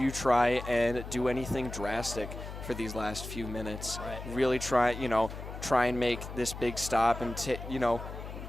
try and do anything drastic for these last few minutes? Right. Really try and make this big stop and, you know,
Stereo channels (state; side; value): noise; left; hum, 10 dB below the sound